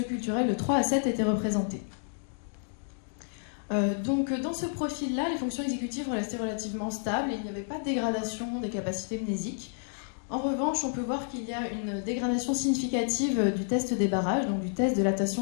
de 3 à 7 étaient représentés. Donc dans ce profil-là, les fonctions exécutives restaient relativement stables et il n'y avait pas de dégradation des capacités mnésiques. En revanche, on peut voir qu'il y a une dégradation significative du test des barrages, donc du test de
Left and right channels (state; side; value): silent; right; digital silence